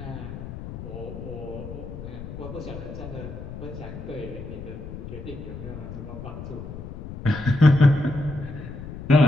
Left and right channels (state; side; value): noise; left; rumble, 10 dB below the sound